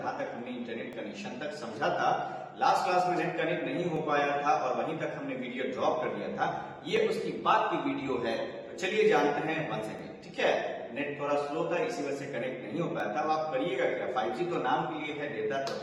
तक हमने इंटरनेट कनेक्शन तक समझा था। लास्ट क्लास में नेट कनेक्ट नहीं हो पाया था और वहीं तक हमने वीडियो ड्रॉप कर दिया था। ये उसकी बाद की वीडियो है, तो चलिए जानते हैं वंस अगेन। ठीक है, नेट थोड़ा स्लो था, इसी वजह से कनेक्ट नहीं हो पाया था। अब आप करिएगा क्या, 5G तो नाम के लिए है, डेटा तो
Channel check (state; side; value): identical; both; correlation 1.00